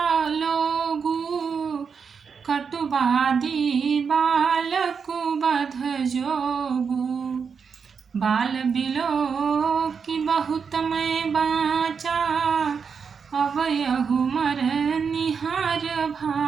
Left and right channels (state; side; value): quieter; left; 6.0 dB